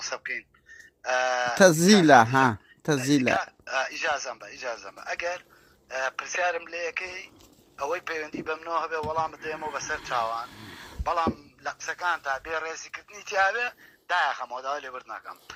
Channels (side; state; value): both; identical; correlation 1.00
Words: بکەین تەزیلە ها تەزیلە ئیجازەم بە ئەگەر پرسیارم لە یەکەی ئەوەی پەیوەندی بەمنەوە هەبێ وەڵام بدەێمەوە بەسەر چاوان بەڵام لە قسەکان تا بێ ڕێزیکردنی تیاابێ داخەمەوەداوای لێبرد ناکەم